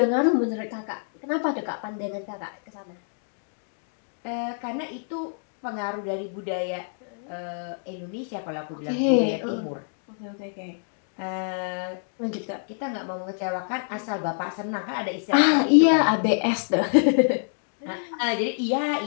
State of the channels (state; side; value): silent; right; digital silence